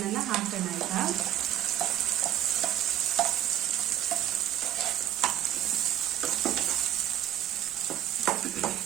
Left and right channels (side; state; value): left; quieter; 12.0 dB